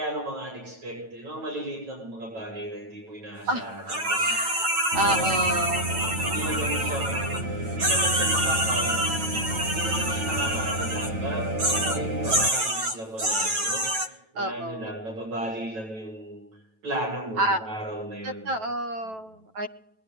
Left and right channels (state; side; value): late; left; 9.1 ms